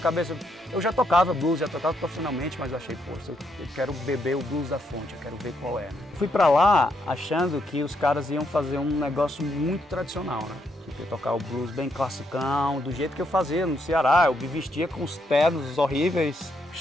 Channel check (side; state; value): both; normal; correlation 0.77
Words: cabeça, eu já tocava blues, já tocava profissionalmente, mas eu achei, pô, eu quero beber o blues da fonte, eu quero ver qual é. Né? Fui pra lá achando que os caras iam fazer um negócio muito tradicional, né? Eu tocar o blues bem classicão, do jeito que eu fazia no Ceará. Eu me vestia com os ternos horríveis,